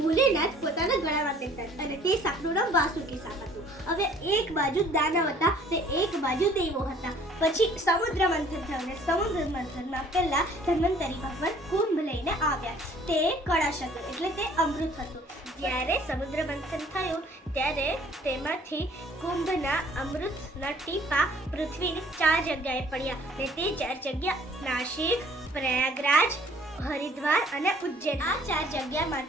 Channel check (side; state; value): both; normal; correlation 0.56